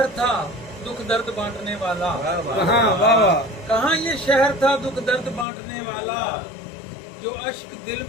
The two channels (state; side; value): drops out; right; at 5.5 s